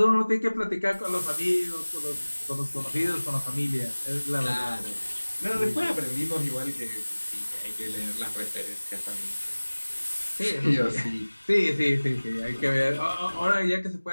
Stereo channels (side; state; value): both; inverted; correlation -1.00